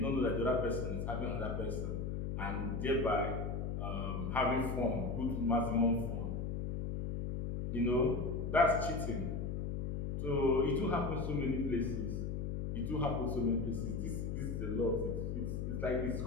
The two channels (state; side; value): noise; left; hum, 2 dB below the sound